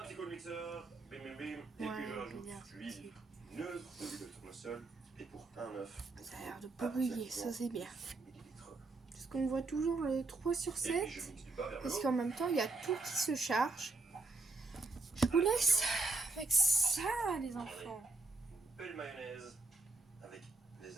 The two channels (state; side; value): quieter; left; 3.4 dB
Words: petit coup de mixeur, bim bim bim, et puis je rajoute l'huile neutre de l'huile de tournesol, et pour un œuf. Ça a l'air de pas brûler, ça c'est bien. Parce qu'on voit toujours le 3 sur 7, parce qu'en même temps il y a tout qui se charge. Je vous laisse avec ça les enfants. Une belle mayonnaise avec des